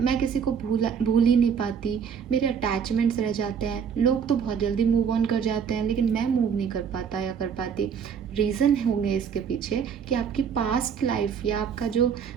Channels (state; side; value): quieter; left; 7.1 dB